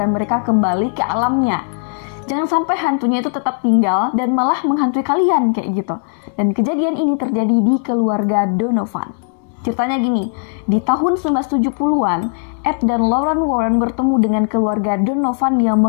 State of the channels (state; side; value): silent; right; digital silence